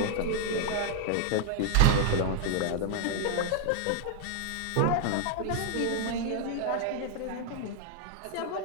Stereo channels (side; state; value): both; different; correlation 0.00